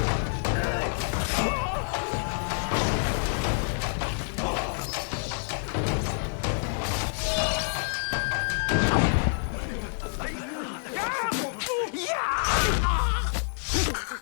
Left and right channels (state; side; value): silent; right; digital silence